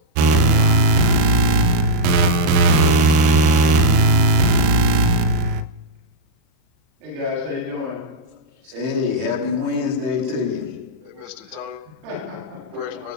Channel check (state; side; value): late; left; 39 ms